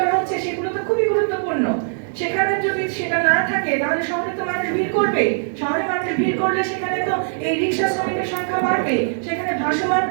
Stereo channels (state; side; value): silent; left; digital silence